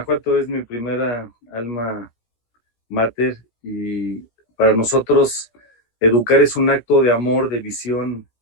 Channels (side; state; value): right; late; 17 ms